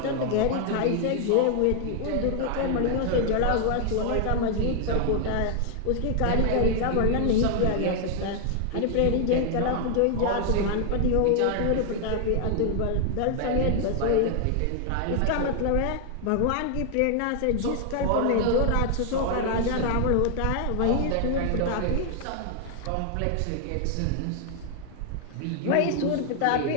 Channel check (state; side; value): different; both; correlation 0.00